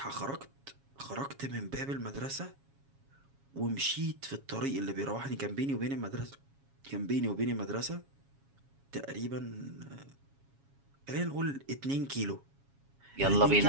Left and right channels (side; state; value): left; late; 7.3 ms